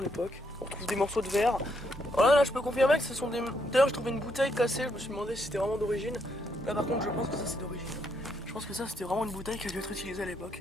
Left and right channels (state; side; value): normal; both; correlation 0.75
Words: l'époque. On retrouve des morceaux de verre. Voilà, là je peux confirmer que ce sont des... D'ailleurs j'ai trouvé une bouteille cassée, je me suis demandé si c'était vraiment d'origine. Là par contre je pense que ça c'est d'origine. Je pense que ça c'était vraiment une bouteille qui a dû être utilisée à